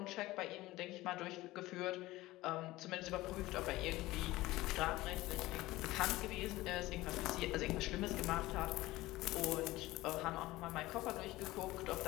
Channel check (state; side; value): quieter; right; 18.2 dB